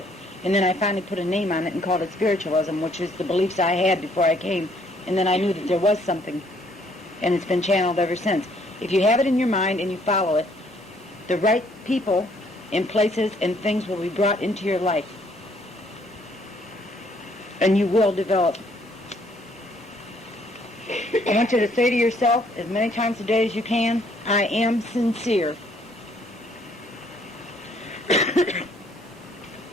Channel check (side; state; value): both; normal; correlation 0.65